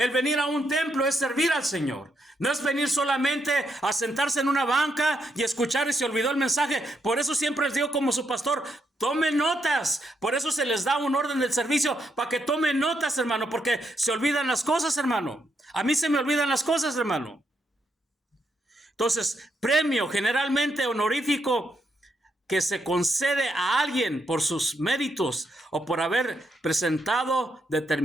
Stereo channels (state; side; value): normal; both; correlation 0.79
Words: venir a un templo es servir al Señor. No es venir solamente a sentarse en una banca y escuchar y se olvidó el mensaje. Por eso siempre les digo como su pastor, tomen notas. Por eso se les da un orden del servicio para que tomen notas, hermano, porque se olvidan las cosas, hermano. A mí se me olvidan las cosas, hermano. Entonces, premio generalmente honorífico que se concede a alguien por sus méritos o por haber presentado